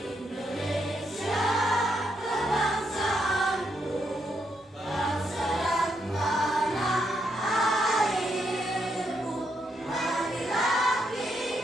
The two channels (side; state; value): both; normal; correlation 0.78